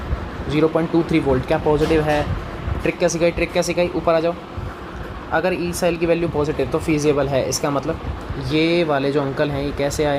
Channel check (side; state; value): both; identical; correlation 1.00